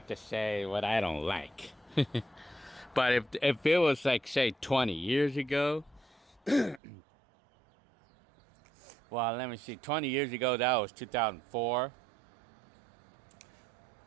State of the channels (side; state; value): left; drops out; at 6.8 s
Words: to say. What I don't like. But if it was like, say, 20 years ago. Well, let me see. 20 years ago, that was 2004.